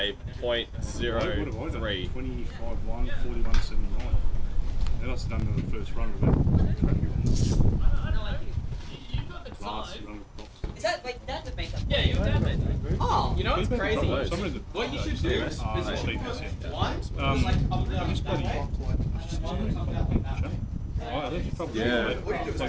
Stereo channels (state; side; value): identical; both; correlation 1.00